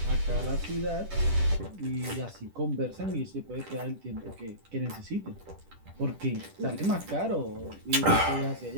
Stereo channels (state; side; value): late; left; 10 ms